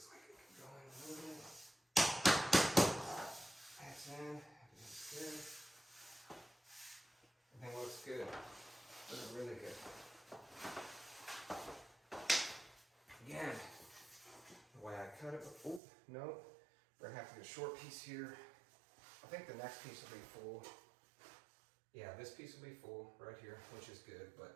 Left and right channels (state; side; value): drops out; left; at 15.8 s